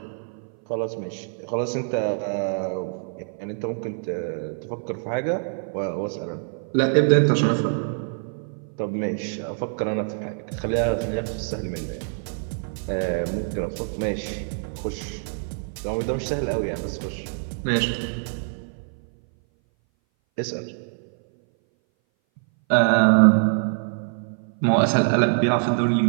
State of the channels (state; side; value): silent; left; 59 dB below the other